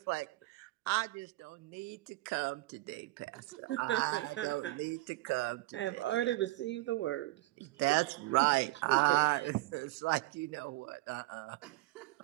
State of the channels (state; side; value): quieter; left; 19.5 dB